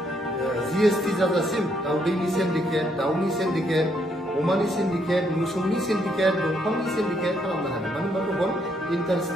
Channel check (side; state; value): both; normal; correlation 0.73